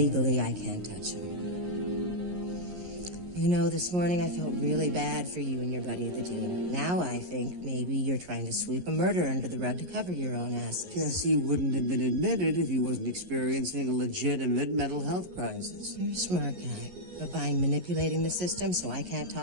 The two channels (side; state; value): left; late; 11 ms